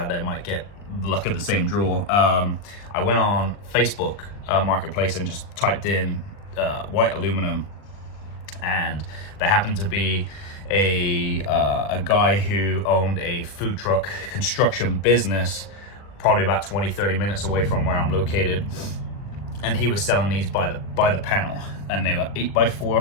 there might get luck of the same draw. I went on Facebook Marketplace and just typed in white aluminum, and there happened to be a guy who owned a food truck construction business probably about 20-30 minutes away from where I'm located, and he was selling these by the panel, and they were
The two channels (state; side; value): late; right; 40 ms